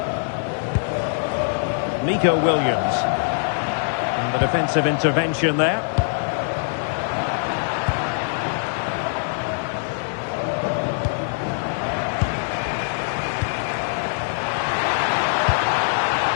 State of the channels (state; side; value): silent; right; digital silence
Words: Nico Williams. And the defensive intervention there.